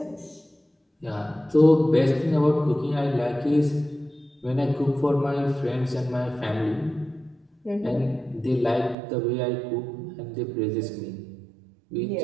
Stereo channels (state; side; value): drops out; left; at 9.0 s